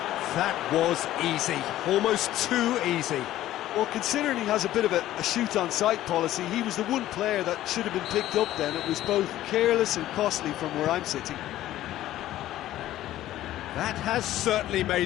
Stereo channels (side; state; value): right; quieter; 14.0 dB